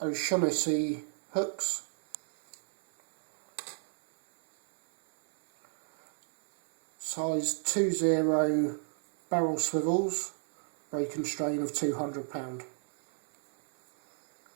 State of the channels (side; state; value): left; silent; 57 dB below the other